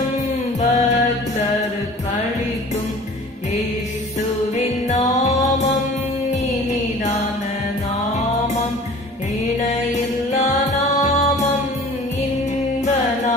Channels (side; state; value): both; normal; correlation 0.45